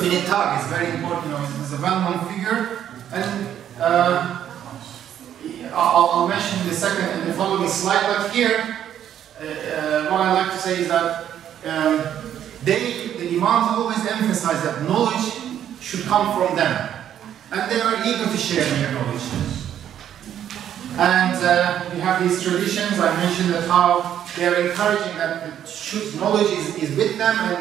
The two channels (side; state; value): left; quieter; 10.2 dB